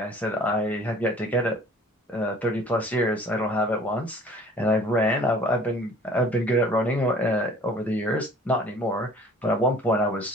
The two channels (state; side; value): normal; both; correlation 0.50